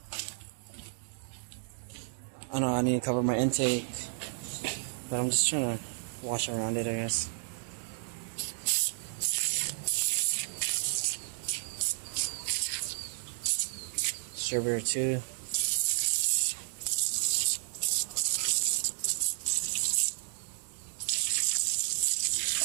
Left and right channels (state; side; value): silent; left; 56 dB below the other